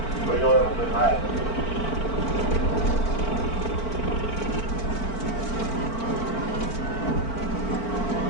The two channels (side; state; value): right; late; 4.5 ms